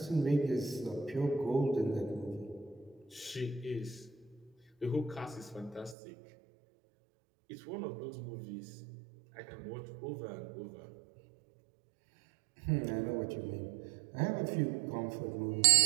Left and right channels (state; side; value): drops out; left; at 6.0 s